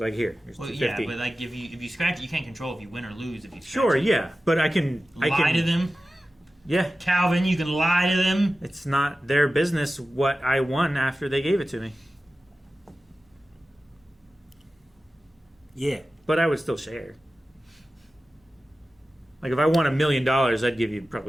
here's Well, $2.50. yeah, but like if you scratch it, you can't control if you win or lose. If you scratch Sure, it. yeah, but I can Lie to them. Yeah, Calvin, you can lie to them. it's not their business what I won after they gave it to me. Yeah. But I would still share. Like if I won $1 million, I'd give you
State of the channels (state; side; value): normal; both; correlation 0.95